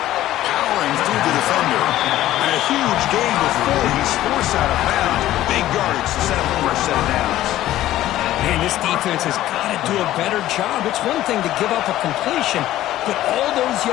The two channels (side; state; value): right; quieter; 14.2 dB